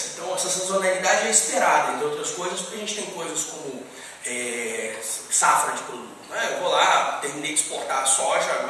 então essa sazonalidade é esperada, entre outras coisas, porque a gente tem coisas como safra de produto. Né? Eu vou lá, terminei de exportar a soja,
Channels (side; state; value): both; identical; correlation 1.00